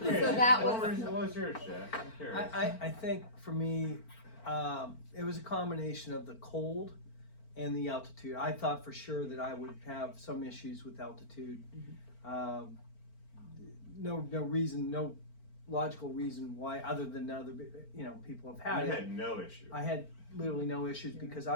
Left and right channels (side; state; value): right; late; 4.4 ms